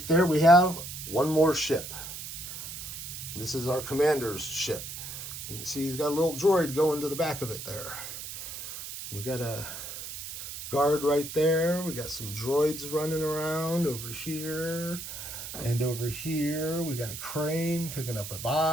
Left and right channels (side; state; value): right; noise; hiss, 9 dB below the sound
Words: there we have one more ship. This is our commander's ship. You can see he's got a little droid going to the back of it there. We got a guard right there. We got some droids running around over here. And over here we got a crane picking up a